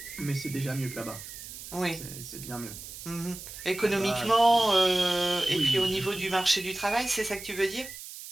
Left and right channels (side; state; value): right; noise; hiss, 12 dB below the sound